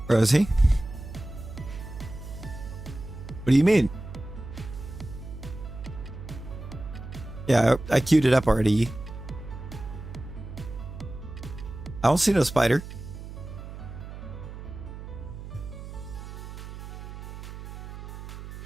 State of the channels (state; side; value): noise; right; hum, 11 dB below the sound